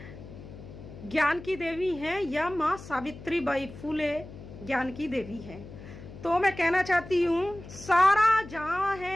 ज्ञान की देवी हैं या माँ सावित्रीबाई फूले ज्ञान की देवी हैं। तो मैं कहना चाहती हूँ, सारा जहां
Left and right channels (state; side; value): noise; left; hum, 15 dB below the sound